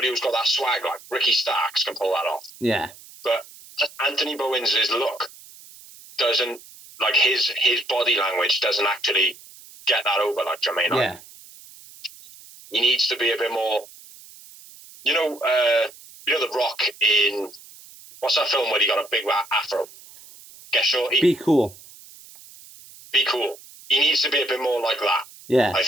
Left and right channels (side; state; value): right; noise; hiss, 21 dB below the sound